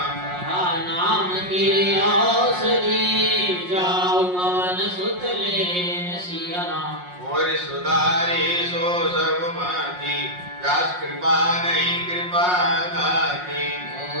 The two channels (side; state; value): left; late; 5.6 ms